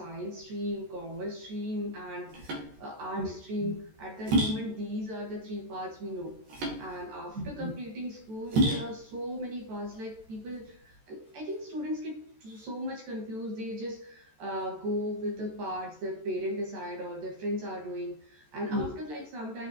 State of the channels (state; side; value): late; left; 14 ms